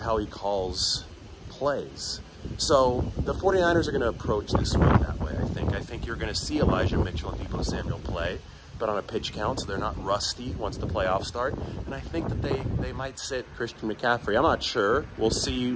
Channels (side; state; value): both; identical; correlation 1.00